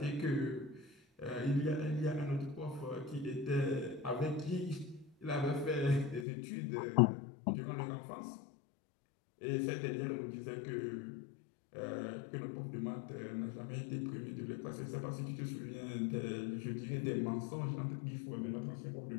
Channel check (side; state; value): right; drops out; at 6.2 s